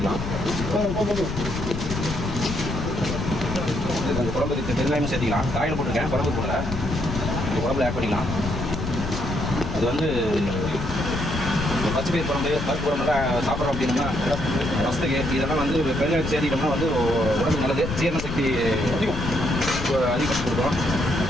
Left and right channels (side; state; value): left; noise; rumble, 5 dB below the sound